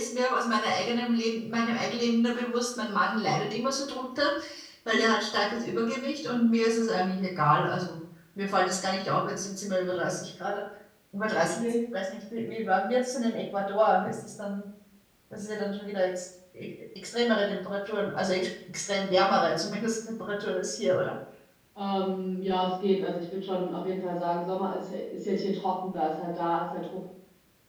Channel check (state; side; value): identical; both; correlation 1.00